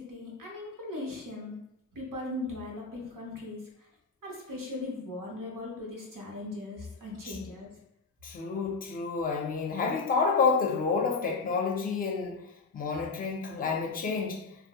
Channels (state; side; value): quieter; right; 4.3 dB